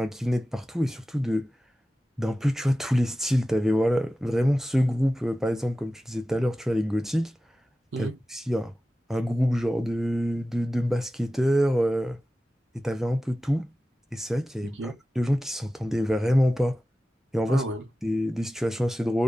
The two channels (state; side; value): normal; both; correlation 0.95